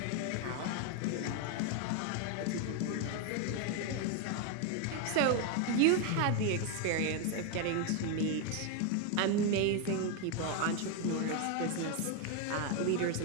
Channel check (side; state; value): both; different; correlation 0.01